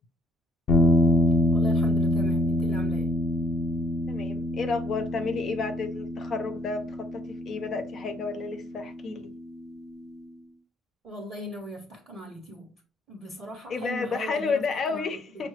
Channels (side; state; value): both; normal; correlation 0.65